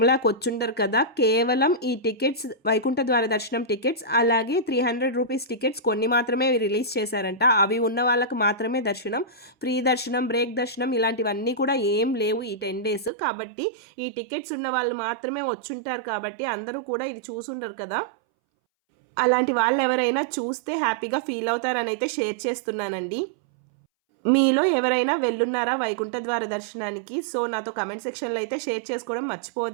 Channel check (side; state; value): left; drops out; at 13.1 s